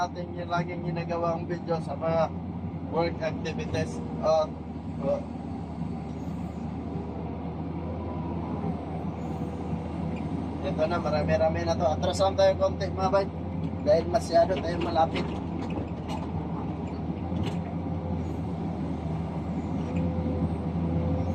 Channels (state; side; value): identical; both; correlation 1.00